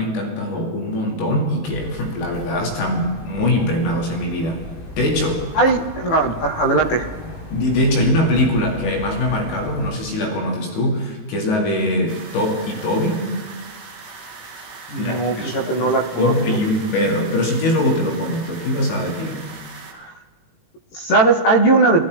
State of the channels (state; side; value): late; right; 19 ms